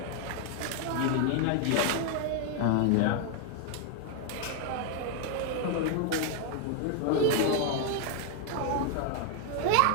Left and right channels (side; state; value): both; different; correlation 0.01